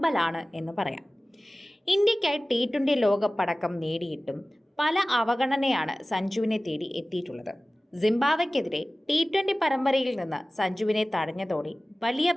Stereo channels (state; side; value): normal; both; correlation 0.97